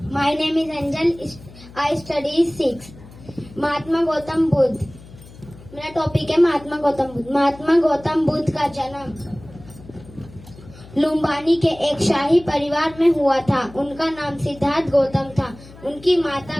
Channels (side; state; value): left; noise; hum, 20 dB below the sound